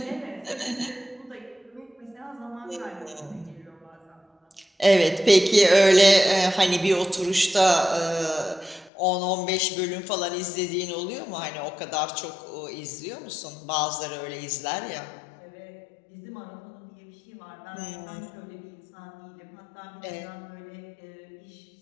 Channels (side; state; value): right; drops out; at 8.9 s